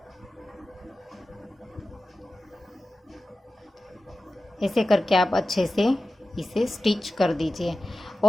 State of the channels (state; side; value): normal; both; correlation 0.95